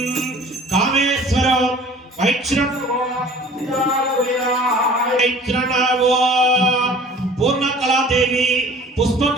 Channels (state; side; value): normal; both; correlation 0.47